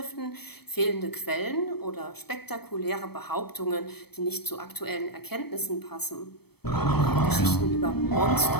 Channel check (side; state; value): right; late; 0.97 ms